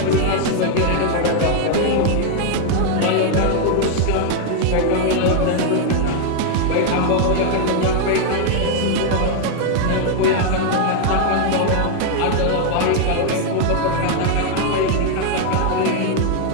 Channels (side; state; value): both; different; correlation 0.00